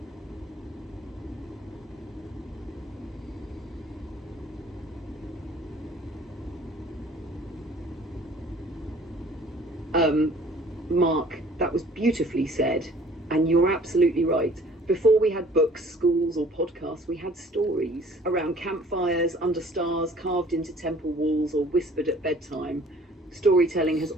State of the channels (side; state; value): both; normal; correlation 0.53